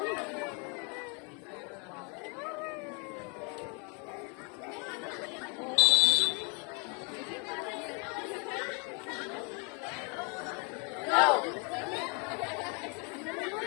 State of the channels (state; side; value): quieter; right; 34.5 dB